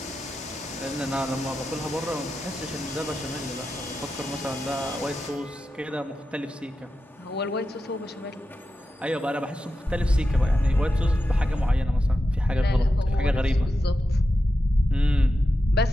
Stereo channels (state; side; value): normal; both; correlation 0.90